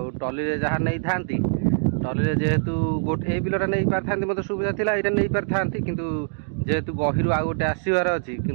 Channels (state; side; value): silent; left; digital silence